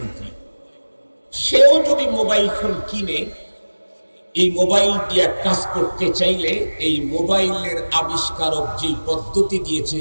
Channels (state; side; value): inverted; both; correlation -1.00